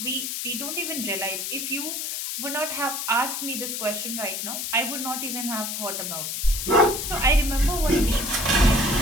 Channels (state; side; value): noise; left; hiss, 3 dB below the sound